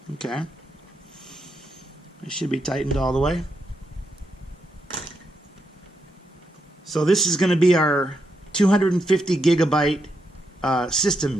Okay. It should be tightened all the way. So this is going to be our 250 gigabyte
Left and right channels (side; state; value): both; normal; correlation 0.82